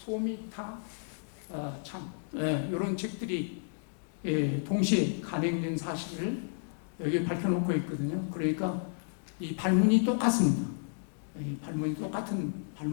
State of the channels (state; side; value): silent; right; digital silence